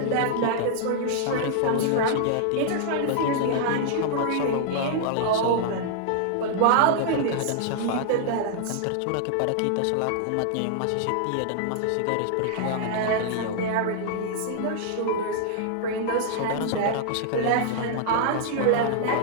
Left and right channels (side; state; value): both; different; correlation -0.01